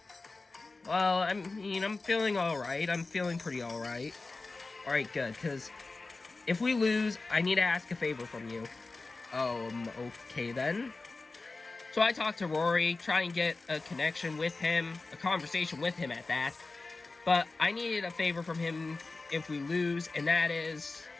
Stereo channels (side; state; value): right; quieter; 3.6 dB